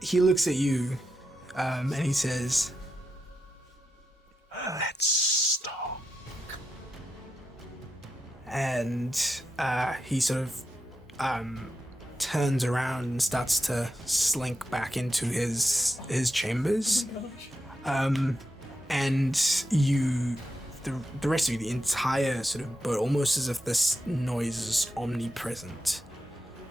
he looks at you, and he says, Let's stop. and he sort of turns around and starts to slink back into his chambers. And you, the rest of you, the entire sort of boat, almost as if this noise is omnipresent.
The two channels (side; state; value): both; normal; correlation 0.87